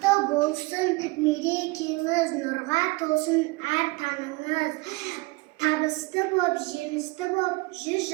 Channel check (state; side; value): quieter; left; 24.4 dB